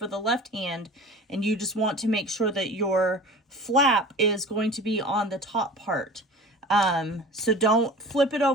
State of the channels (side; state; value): both; normal; correlation 0.39